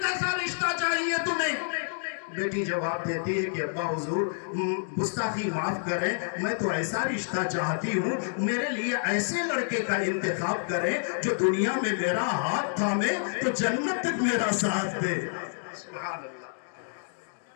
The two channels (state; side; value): silent; right; digital silence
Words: کیسا رشتہ چاہیے تمہیں؟ بیٹی جواب دیتی ہے کہ ابا حضور گستاخی معاف کریں، میں تو ایسا رشتہ چاہتی ہوں، میرے لیے ایسے لڑکے کا انتخاب کریں جو دنیا میں میرا ہاتھ تھامے تو جنت تک میرا ساتھ دے۔ سبحان اللہ،